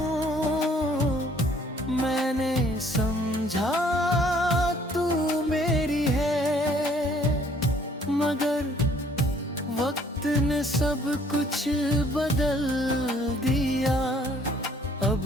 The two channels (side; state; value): both; normal; correlation 0.60